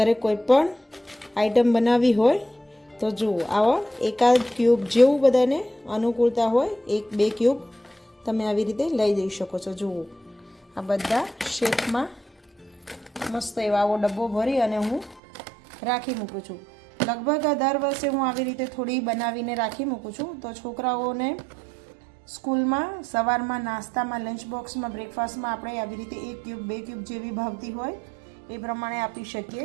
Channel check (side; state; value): left; drops out; at 15.2 s